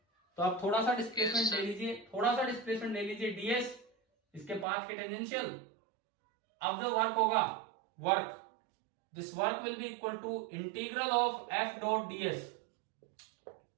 तो आप थोड़ा सा डिस्प्लेसमेंट ले लीजिए, थोड़ा सा डिस्प्लेसमेंट ले लीजिए, डीएस इसके पाथ के टेंजेंशियल। अब जो वर्क होगा, work, this work will be equal to integral of F dot DS.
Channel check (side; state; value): left; drops out; at 4.7 s